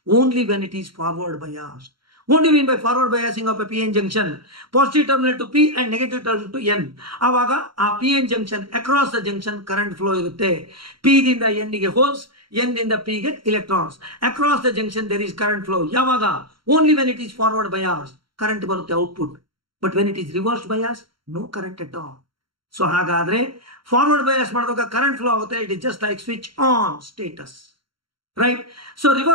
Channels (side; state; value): left; late; 0.73 ms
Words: only when it is forward bias. What do you mean by forward biasing of a PN junction? Positive terminal to P and negative terminal to N. ಆವಾಗ ಆ PN junction across the junction current flow ಇರುತ್ತೆ. P ದಿಂದ N ಗೆ holes, N ದಿಂದ P ಗೆ electrons. Across the junction there is current flow. ಯಾವಾಗ? Only when it is forward bias current ಬರುತ್ತೆ output. But when it is reverse bias, no current at all. So ಹಾಗಾದ್ರೆ forward bias ಮಾಡಿದಾಗ current flow ಆಗುತ್ತೆ. It is just like switch on status. Right? So